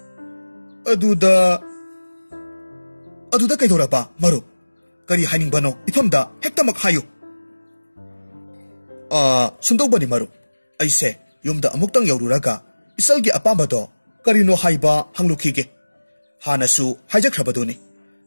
aduda kaidoraba marup kari hainingbano ifamda hektamak hayu sundobani marup aise yumda amuktang yaururaga isalgi apambado karino haiba hanglukhige hanasu haijakhrabaduni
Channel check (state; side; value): inverted; both; correlation -1.00